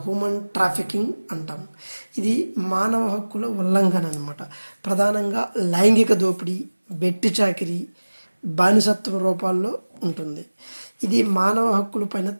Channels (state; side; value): inverted; both; correlation -1.00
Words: హ్యూమన్ ట్రాఫికింగ్ అంటాం. ఇది మానవ హక్కుల ఉల్లంఘన అనమాట. ప్రధానంగా లైంగిక దోపిడీ, వెట్టి చాకిరీ, బానిసత్వ రూపాల్లో ఉంటుంది. ఇది మానవ హక్కుల పైన